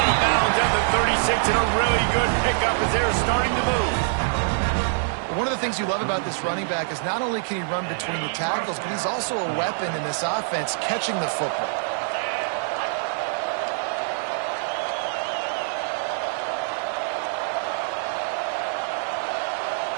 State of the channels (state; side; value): silent; left; 62 dB below the other